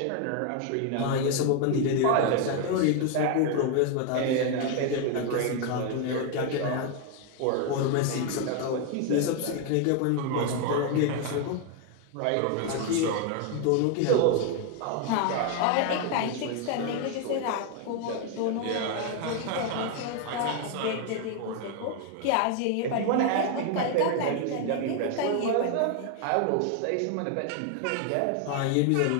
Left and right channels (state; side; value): different; both; correlation 0.01